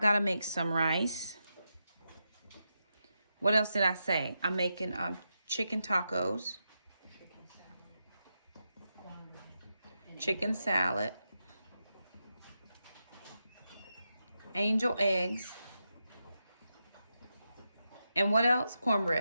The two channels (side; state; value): both; inverted; correlation -0.87